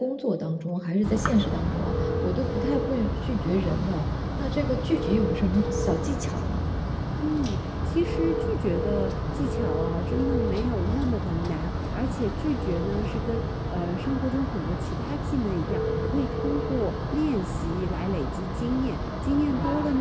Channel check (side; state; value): both; identical; correlation 1.00